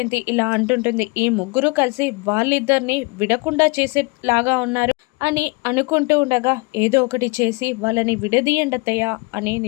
ఇలా అంటుంటుంది, ఈ ముగ్గురు కలిసి వాళ్ళిద్దరిని విడకుండా చేసేలాగా ఉన్నారు అని అనుకుంటూ ఉండగా ఏదో ఒకటి చేసి వాళ్ళని విడదీయండతయ్యా అని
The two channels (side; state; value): right; quieter; 28.6 dB